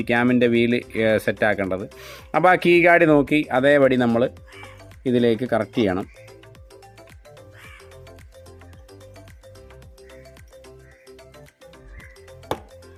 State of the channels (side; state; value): both; identical; correlation 1.00